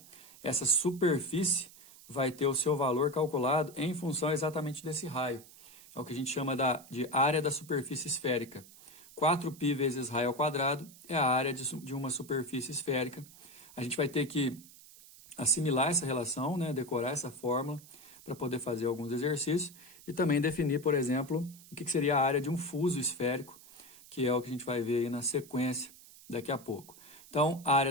essa superfície vai ter o seu valor calculado em função exatamente desse raio. É o que a gente chama de área da superfície esférica. 4π vezes raio ao quadrado é a área de uma superfície esférica. A gente vai ter que assimilar essa relação, né, decorar essa fórmula para poder fazer alguns exercícios e também definir, por exemplo, o que seria a área de um fuso esférico, que é o que a gente vai ver aí na sequência daqui a pouco. Então, a área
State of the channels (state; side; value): noise; right; hiss, 21 dB below the sound